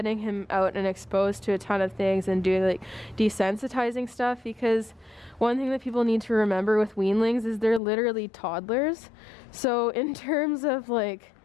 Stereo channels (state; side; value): drops out; right; at 7.8 s